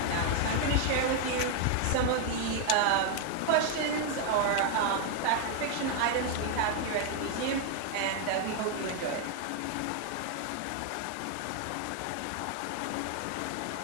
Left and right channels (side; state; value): both; different; correlation 0.00